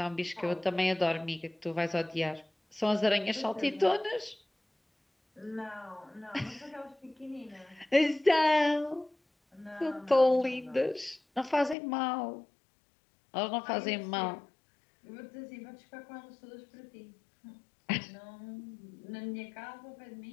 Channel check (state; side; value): drops out; right; at 11.8 s